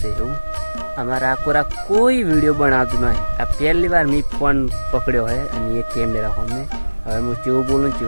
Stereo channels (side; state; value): both; inverted; correlation -1.00